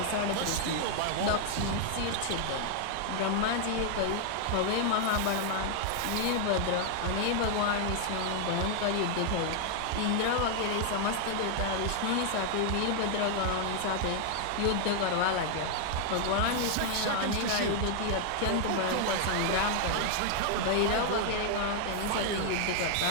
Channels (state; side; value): different; both; correlation 0.00